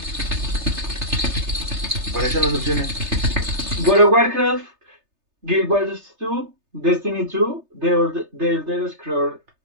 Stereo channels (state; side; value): late; left; 3.3 ms